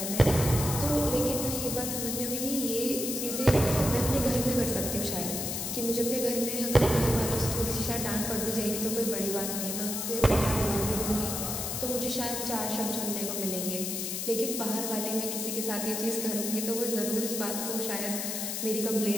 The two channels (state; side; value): noise; left; hiss, 3 dB below the sound